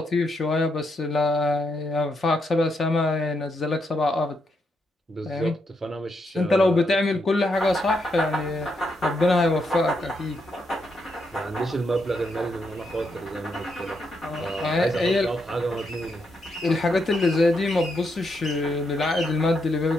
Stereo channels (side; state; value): both; normal; correlation 0.80